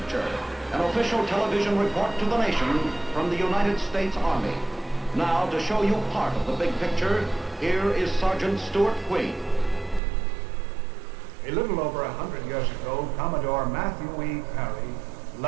an official television report to the nation from the United States Army. Now, to show you part of the big picture, here is Sergeant Stuart Queen. A little over 100 years ago, Commodore Matthew E. Perry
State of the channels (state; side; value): drops out; left; at 10.0 s